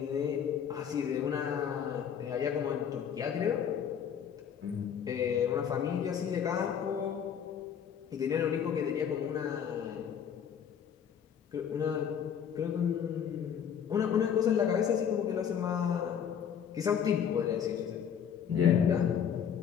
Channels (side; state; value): right; quieter; 8.2 dB